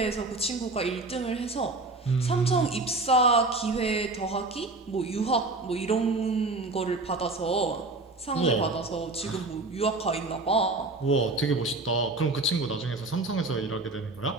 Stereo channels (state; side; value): quieter; left; 3.2 dB